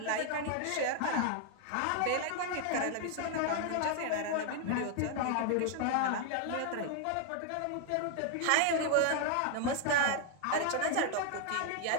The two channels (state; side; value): different; both; correlation 0.00